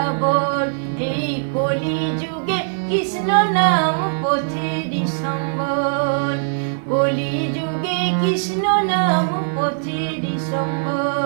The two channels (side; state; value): left; silent; digital silence